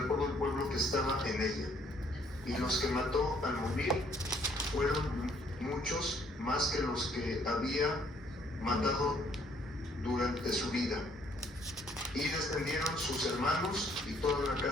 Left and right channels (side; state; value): both; normal; correlation 0.65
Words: todo el pueblo que estaba en ella. Y los que mató al morir fueron muchos, más que los que había matado durante su vida. Y descendieron sus hermanos y toda la